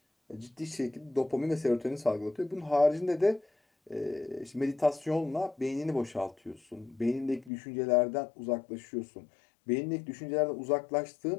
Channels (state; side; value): drops out; right; at 7.5 s